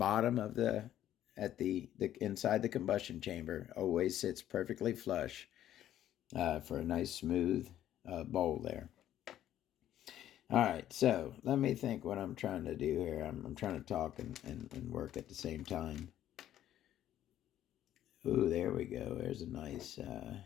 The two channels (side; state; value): right; quieter; 12.0 dB